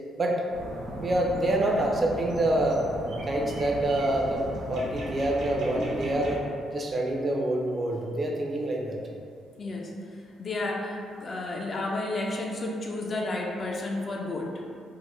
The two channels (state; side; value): normal; both; correlation 0.76